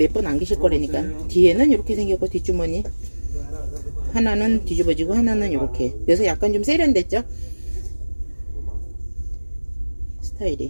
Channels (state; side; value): inverted; both; correlation -1.00